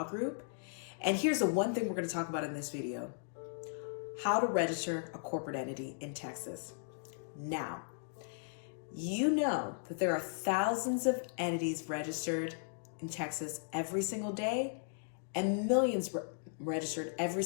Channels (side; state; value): right; silent; digital silence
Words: Group. And here's the one thing we're going to talk about in this video: how to register a corporate entity in Texas. Now, you know that there are thousands of entities registered in Texas every single day and millions registered every